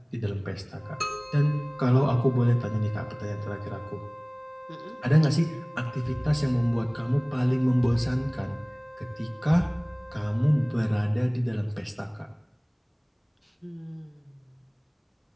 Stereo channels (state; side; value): identical; both; correlation 1.00